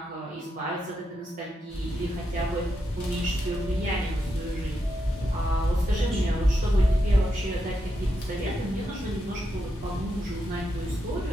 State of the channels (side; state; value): both; normal; correlation 0.84